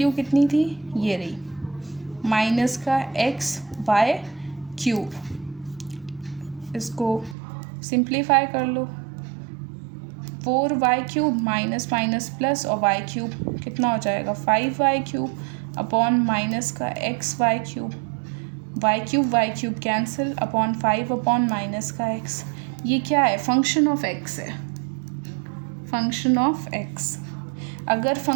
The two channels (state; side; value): drops out; left; at 7.4 s